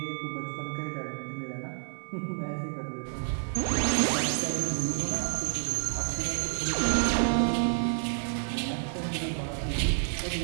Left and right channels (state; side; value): silent; left; digital silence